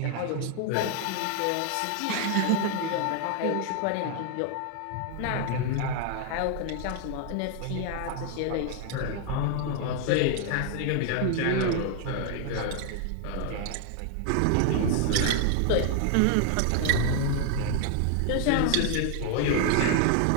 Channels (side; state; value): both; different; correlation 0.00